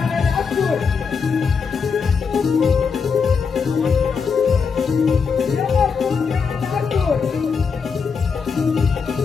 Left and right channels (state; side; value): quieter; right; 5.7 dB